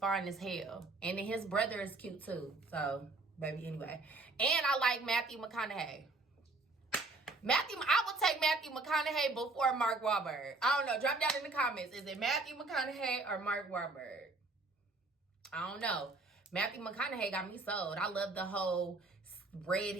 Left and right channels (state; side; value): quieter; left; 3.3 dB